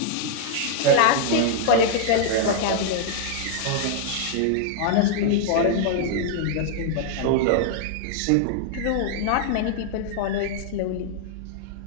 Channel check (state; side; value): different; both; correlation -0.01